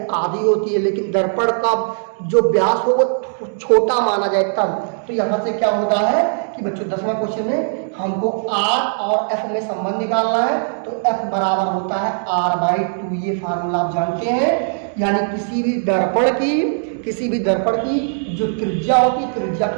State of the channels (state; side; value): silent; left; digital silence